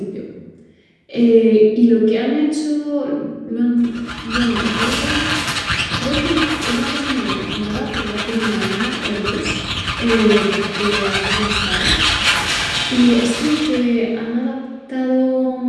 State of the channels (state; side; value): identical; both; correlation 1.00